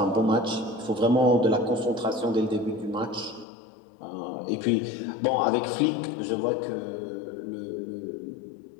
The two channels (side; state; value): right; drops out; at 3.5 s